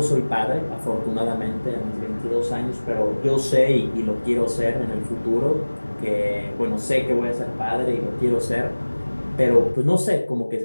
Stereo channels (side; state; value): both; inverted; correlation -1.00